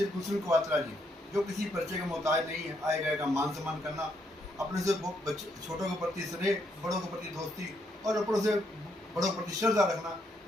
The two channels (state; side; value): normal; both; correlation 0.75